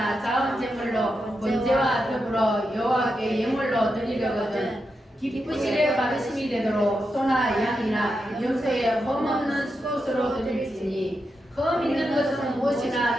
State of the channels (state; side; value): normal; both; correlation 0.86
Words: 자원제물로 번제와 더불어 여호와께 예물로 드리려거든 기쁘시게 받으심이 되도록 소나 양이나 염소의 흠없는 수것으로 드릴지니 흠 있는 것은